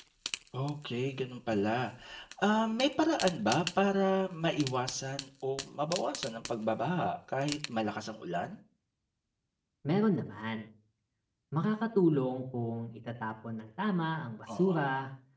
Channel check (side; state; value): both; identical; correlation 1.00